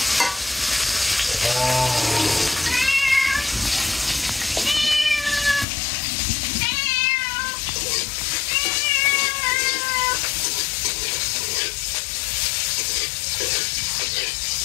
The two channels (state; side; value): drops out; right; at 5.7 s